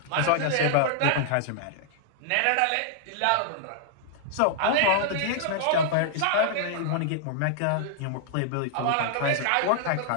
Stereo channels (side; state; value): both; different; correlation -0.01